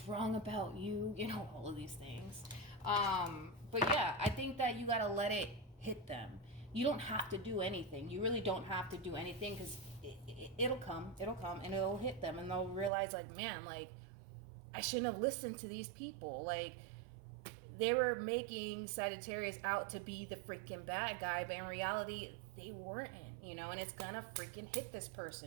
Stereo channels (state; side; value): drops out; left; at 12.9 s